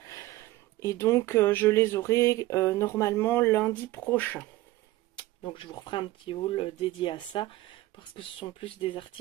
Et donc, je les aurai normalement lundi prochain. Donc, je vous referai un petit haul dédié à ça parce que ce sont plus des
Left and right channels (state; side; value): quieter; left; 17.4 dB